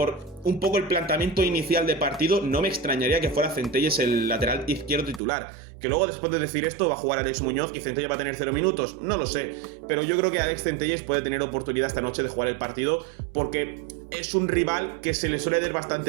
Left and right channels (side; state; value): left; drops out; at 5.2 s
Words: un poco el planteamiento inicial de partido, no me extrañaría que fuera Centelles el lateral izquierdo titular. Que luego, después de decir esto, va a jugar Alex Muñoz y Centelles va a tener 0 minutos, no lo sé. Pero yo creo que Alex Centelles puede tener oportunidad esta noche de jugar el partido porque es un rival que se le suele dar